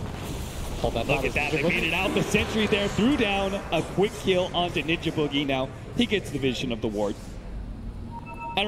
hold that? Look at that, they made it out. The sentry there threw down a quick kill onto Ninja Boogie. Now, he gets the vision of the ward. I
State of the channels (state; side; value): identical; both; correlation 1.00